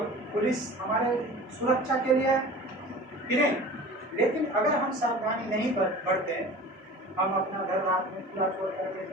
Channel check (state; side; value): normal; both; correlation 0.39